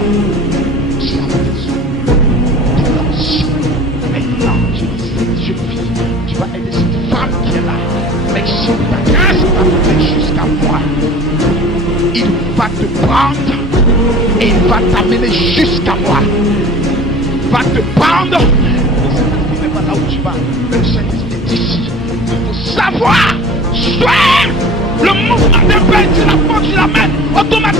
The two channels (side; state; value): both; normal; correlation 0.41